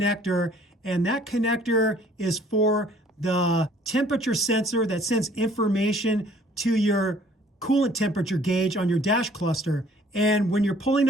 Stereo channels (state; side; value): normal; both; correlation 0.56